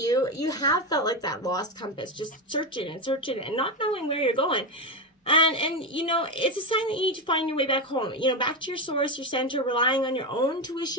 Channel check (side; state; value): both; normal; correlation 0.13